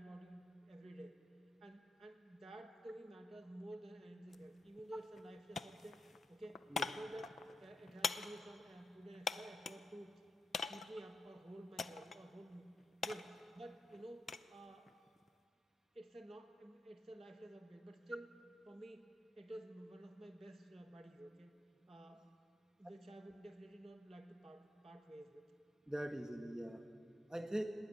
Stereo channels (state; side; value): normal; both; correlation 0.85